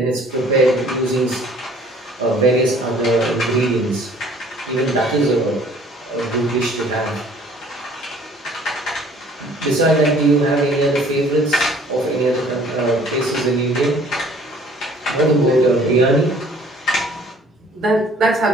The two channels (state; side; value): normal; both; correlation 0.55